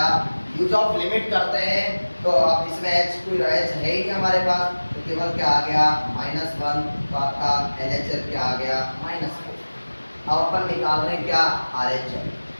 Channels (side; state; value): both; inverted; correlation -1.00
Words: यूज ऑफ लिमिट करते हैं तो अब इसमें h कोई h है ही नहीं हमारे पास, तो केवल क्या आ गया, -1, तो आपका LHL क्या आ गया, -4। अब अपन निकाल रहे हैं क्या, RHL।